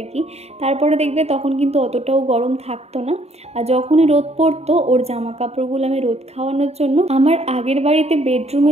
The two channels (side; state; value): left; late; 0.31 ms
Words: কি। তারপরে দেখবে তখন কিন্তু অতটাও গরম থাকতো না, আর যখনই রোদ পড়তো ওর জামা কাপড়গুলো আমি রোদ খাওয়ানোর জন্য আমার আগের বাড়িতে বেডরুমে